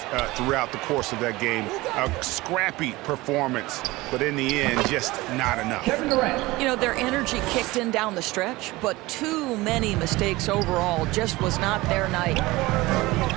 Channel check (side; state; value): left; quieter; 20.4 dB